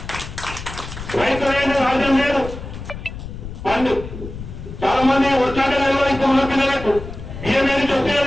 రైతు అనేది రాజ్యం లేదు. పండు చాలా మంది వచ్చాక తెలియదు, ఇంకా ఉన్న పిల్లలకు బియ్యం ఏది చూస్తే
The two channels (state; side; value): noise; left; rumble, 10 dB below the sound